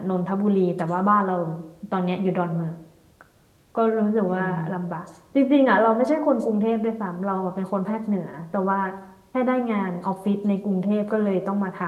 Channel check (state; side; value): identical; both; correlation 1.00